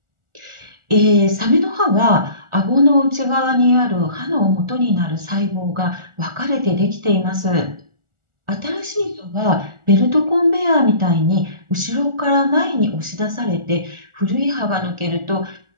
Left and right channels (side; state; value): left; late; 1.4 ms